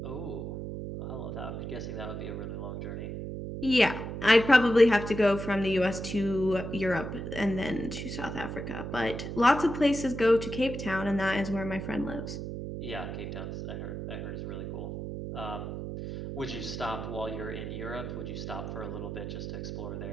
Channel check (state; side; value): noise; right; hum, 6 dB below the sound